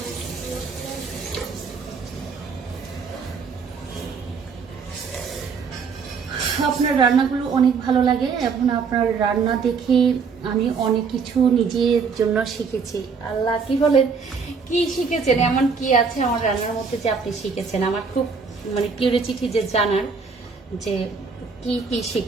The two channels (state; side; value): quieter; left; 5.4 dB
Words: আপনার রান্নাগুলো অনেক ভালো লাগে। এখন আপনার রান্না দেখে আমি অনেক কিছু নিজের জন্য শিখেছি। আল্লাহ, কি বলেন, কি শিখেছেন? এমন কি আছে আমার রান্নার মধ্যে যে আপনি শিখেছেন? আমার খুব মানে কিউরিওসিটি যে জানার যে কি কি